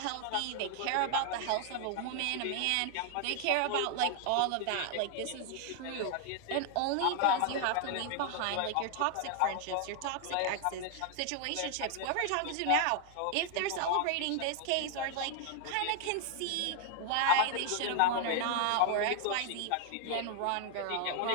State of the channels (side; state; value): both; different; correlation 0.00